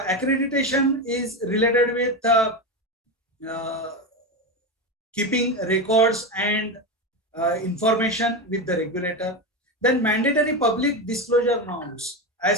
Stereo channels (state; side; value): normal; both; correlation 0.17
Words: is related with keeping records and information with the regulator. Then mandatory public disclosure norms.